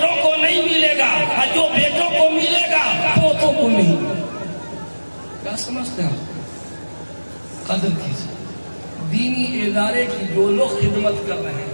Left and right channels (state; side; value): inverted; both; correlation -1.00